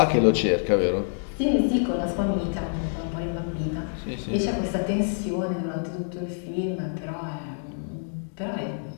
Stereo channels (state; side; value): silent; right; 61 dB below the other